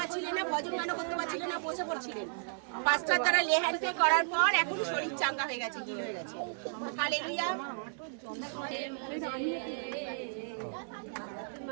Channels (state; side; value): silent; left; 55 dB below the other